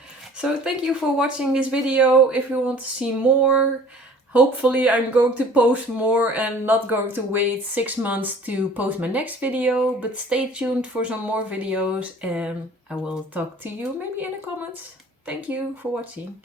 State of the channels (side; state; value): both; normal; correlation 0.48